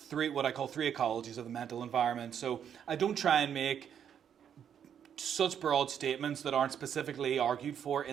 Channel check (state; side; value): quieter; left; 8.6 dB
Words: what I call three ecologies of the mental environment. So I don't try and make such broad statements that aren't specifically argued for